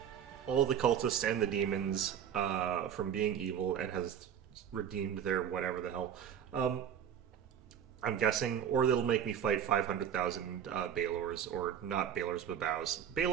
all the cultists and the demons from being evil and has redeemed their whatever the hell. I'm guessing, or they'll make me fight 500,000 Balors, or not Balors, but Bows.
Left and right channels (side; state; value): left; quieter; 9.0 dB